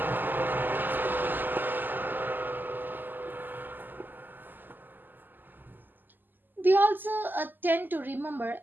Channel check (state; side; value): late; left; 0.090 ms